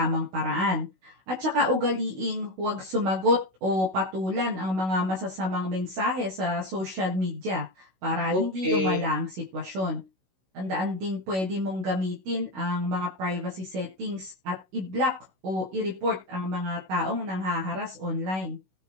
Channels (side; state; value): left; late; 16 ms